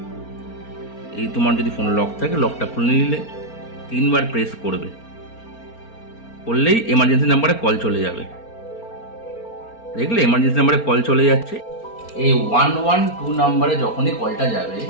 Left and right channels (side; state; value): right; late; 4.4 ms